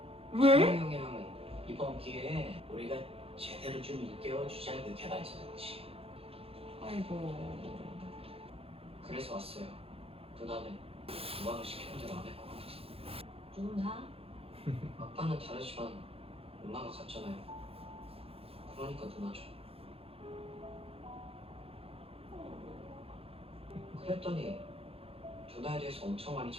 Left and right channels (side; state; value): left; late; 0.28 ms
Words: 왜? 찬홍이 형이랑은 이번 기회에 우리가 제대로 좀 일깨워주자는 그 개발자는 거지. 아이고. 그래서 왔어요. 누나는 누나가 시키는 대로 안 할 것 같아서. 누나? 아빠는 다르지만 엄마가 같잖아요. 그러니까 누나죠. 그랬더니 누나에 대해서 엄청 많이